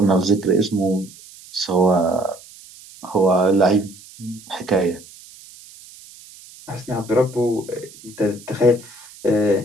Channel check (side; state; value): right; noise; hiss, 21 dB below the sound